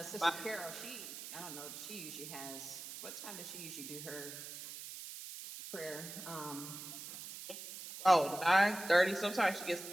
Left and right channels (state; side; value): noise; right; hiss, 10 dB below the sound